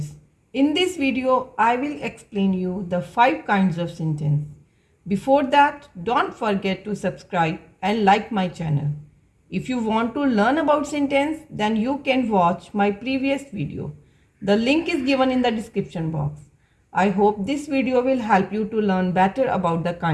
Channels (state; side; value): identical; both; correlation 1.00